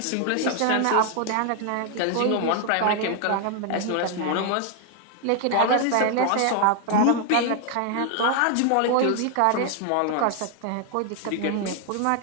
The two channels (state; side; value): different; both; correlation 0.00